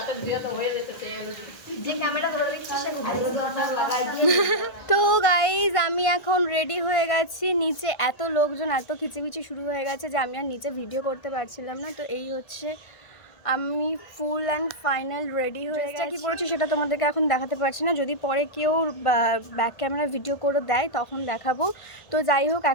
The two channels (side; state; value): right; late; 1.5 ms